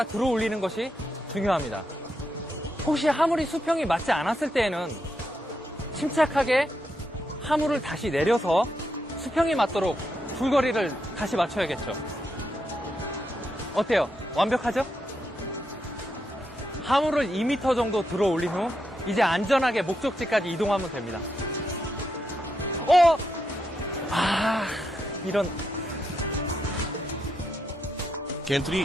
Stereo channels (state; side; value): normal; both; correlation 0.83